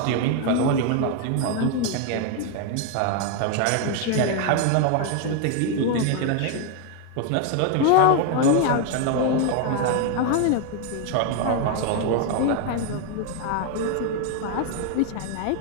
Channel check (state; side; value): different; both; correlation 0.01